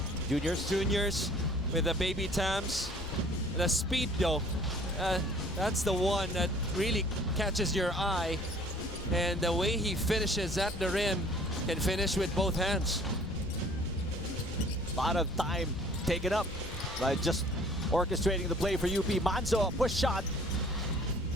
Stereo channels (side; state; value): left; noise; rumble, 14 dB below the sound